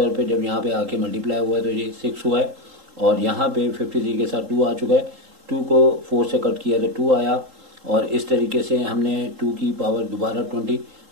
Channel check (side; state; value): left; late; 3.8 ms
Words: पे जब यहाँ पे आके मल्टीप्लाई हुआ है तो ये 6 हुआ है, और यहाँ पे 53 के साथ 2 आ चुका है, 2 को 4 से कट किया तो 2 आया, और इस तरीके से हमने 2 की पावर दोबारा